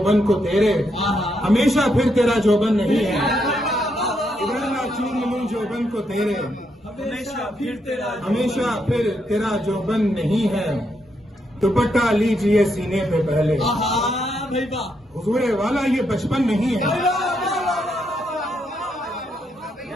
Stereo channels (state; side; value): normal; both; correlation 0.79